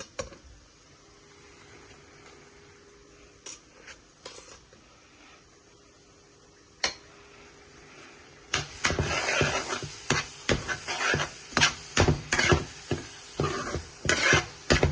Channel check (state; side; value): identical; both; correlation 1.00